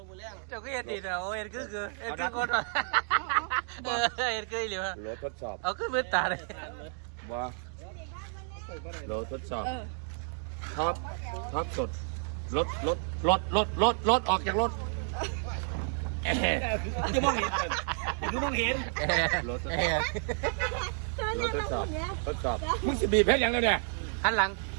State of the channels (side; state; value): left; silent; 56 dB below the other